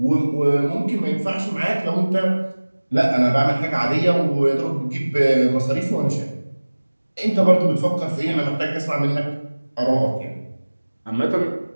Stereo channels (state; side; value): inverted; both; correlation -1.00